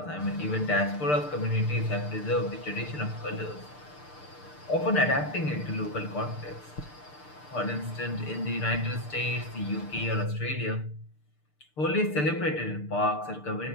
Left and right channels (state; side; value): late; right; 6.7 ms